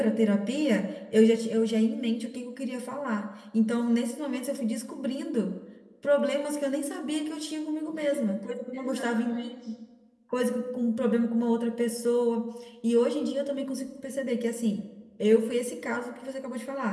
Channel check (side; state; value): both; identical; correlation 1.00